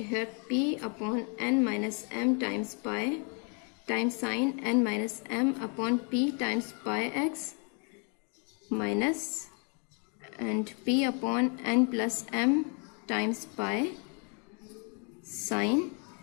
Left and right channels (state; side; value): quieter; right; 37.3 dB